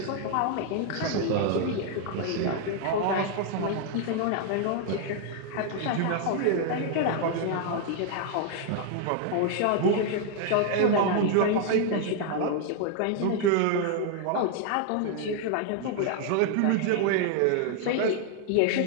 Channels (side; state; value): both; different; correlation 0.00